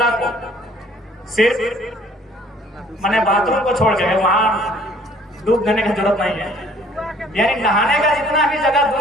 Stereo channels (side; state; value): both; normal; correlation 0.57